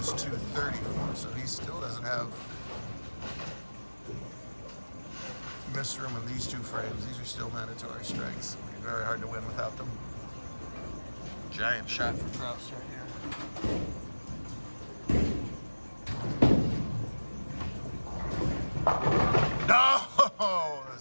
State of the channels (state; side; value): inverted; both; correlation -1.00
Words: 234, so he still doesn't have miss room in these two frames. These are still mandatory strikes. It'll be very hard to win without them. Giant shot for Kraus right here. No! The